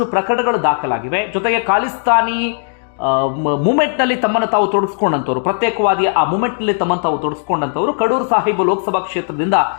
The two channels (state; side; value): silent; right; digital silence